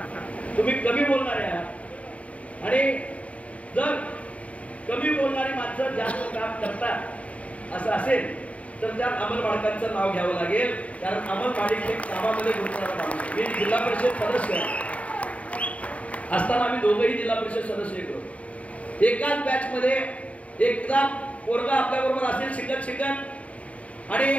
तुम्ही कमी बोलणारे आहात आणि जर कमी बोलणारी माणसं जास्त काम करतात असं असेल तर त्यात अमल माडकांचं नाव घ्यावं लागेल. कारण अमल माडिक हे कामामध्ये गुंतणारा माणूस. मी जिल्हा परिषद सदस्य असताना आम्ही दोघंही जिल्हा परिषद सदस्य होतो. एकाच बॅच मध्ये एकदा पोरगा आपल्या बरोबर असेल शिकत आणि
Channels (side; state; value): right; late; 0.066 ms